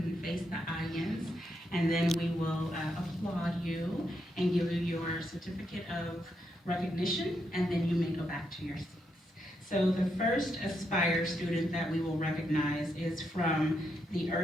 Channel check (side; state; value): both; normal; correlation 0.80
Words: face the audience, and then we will applaud you and give you your certificate of recognition, and then you may go back to your seats. So the first Aspire student that we will recognize is from the